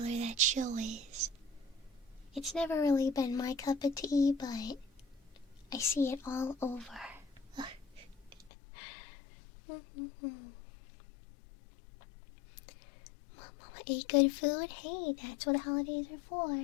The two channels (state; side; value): drops out; right; at 8.5 s